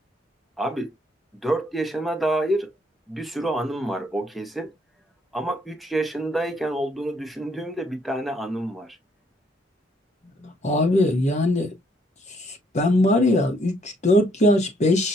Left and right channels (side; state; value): both; normal; correlation 0.68